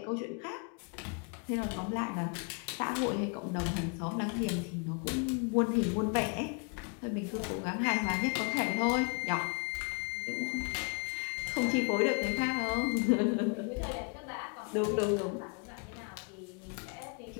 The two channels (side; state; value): right; quieter; 37.6 dB